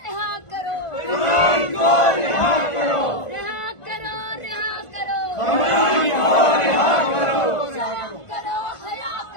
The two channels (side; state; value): right; late; 1.5 ms